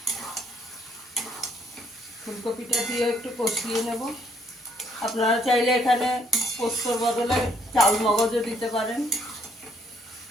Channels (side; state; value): both; normal; correlation 0.68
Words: ফুলকপিটা দিয়ে একটু কষিয়ে নেব। আপনারা চাইলে এখানে পোস্তর বদলে চাল মগজও দিতে পারেন।